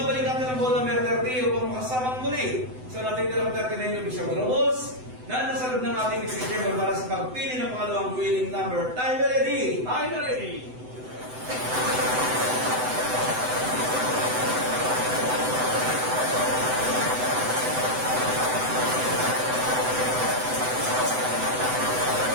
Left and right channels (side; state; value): left; late; 7.9 ms